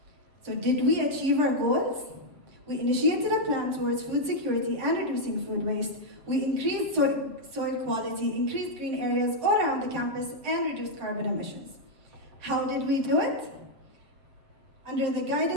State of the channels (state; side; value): late; left; 7.1 ms